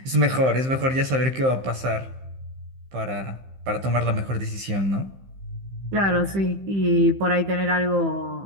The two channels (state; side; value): late; left; 15 ms